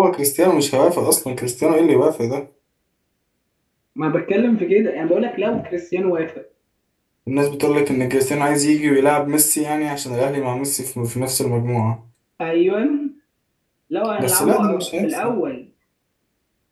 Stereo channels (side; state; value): both; identical; correlation 1.00